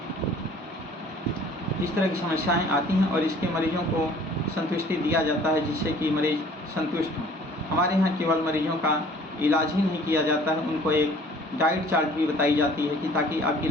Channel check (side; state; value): both; normal; correlation 0.52